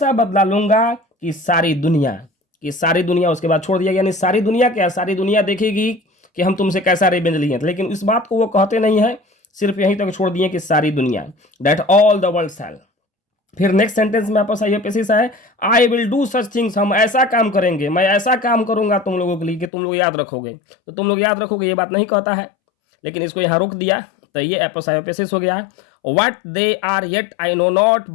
बदला लूंगा कि सारी दुनिया उसके बाद छोड़ दिया, यानी सारी दुनिया क्या, सारी दुनिया देखेगी कि हम तुमसे कैसा रिवेंज लिए, लेकिन इस बात को वो कहते नहीं है, सिर्फ यहीं तक छोड़ दिए कि सारी दुनिया, दैट ऑल द वर्ल्ड शैल। फिर नेक्स्ट सेंटेंस में आपस आईएपीएस है, I will do such things, हम ऐसा काम करेंगे, मैं ऐसा काम करूंगा तुम लोगों के लिए कि तुम लोग याद रखोगे, तो तुम लोग याद रखोगे ये बात नहीं कहता है, लेकिन इसको यहाँ रोक दिया, तो ये एपस आईएपीएस हो गया। What they are yet I know not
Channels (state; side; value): drops out; right; at 19.7 s